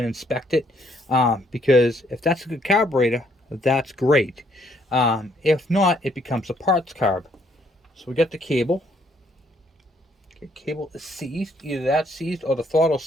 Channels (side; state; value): both; normal; correlation 0.68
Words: inspect it because if that's a good carburetor, that's great. If not, it becomes a parts carb. So we got the cable. Okay, cable is seized. Either that's seized or the throttle